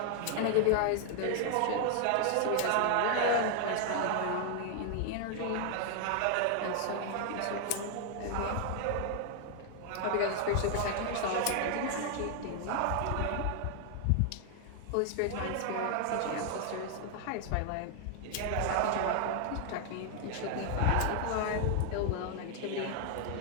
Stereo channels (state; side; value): different; both; correlation 0.00